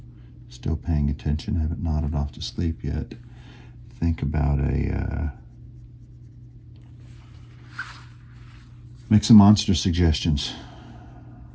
still paying attention, haven't nodded off to sleep yet, think about make some monster suggestions.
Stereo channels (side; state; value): both; identical; correlation 1.00